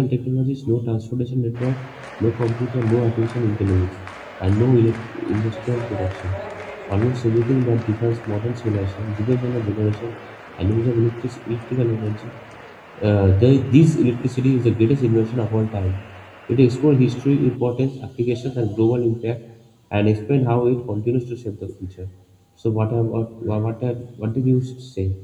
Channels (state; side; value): identical; both; correlation 1.00